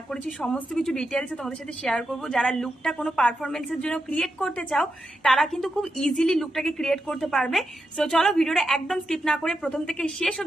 করেছি সমস্ত কিছু ডিটেলসে তোমাদের সাথে শেয়ার করব। যারা লুকটা কোনো পারফরমেন্সের জন্য ক্রিয়েট করতে চাও তারা কিন্তু খুব ইজিলি লুকটাকে ক্রিয়েট করতে পারবে। সো চলো ভিডিওটা একদম স্কিপ না করে প্রথম থেকে শেষ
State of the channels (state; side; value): normal; both; correlation 0.86